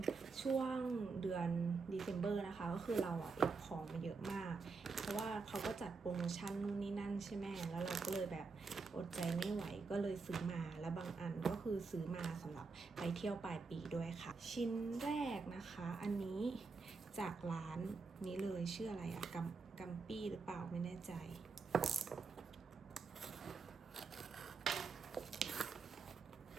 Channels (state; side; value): quieter; left; 4.5 dB